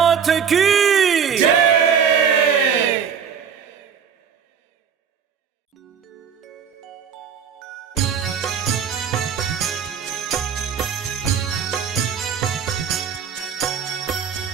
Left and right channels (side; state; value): left; quieter; 7.3 dB